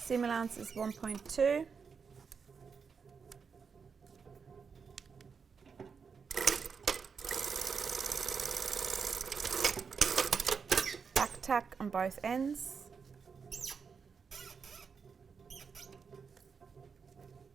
allowance is 1.2. Tack on both ends.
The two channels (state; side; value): quieter; left; 5.8 dB